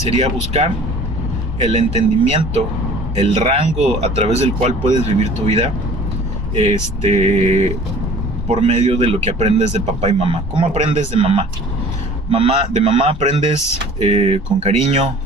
buscar el entendimiento, el rango a través del cual puedes vivir tu vida, por medio de lo que aprendes de papá y mamá. ¿Cómo aprendes de mamá? De mamá aprendes con cariño,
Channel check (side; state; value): both; normal; correlation 0.48